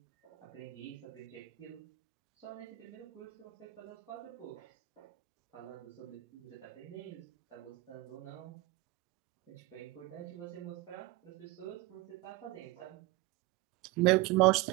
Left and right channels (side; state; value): left; quieter; 20.9 dB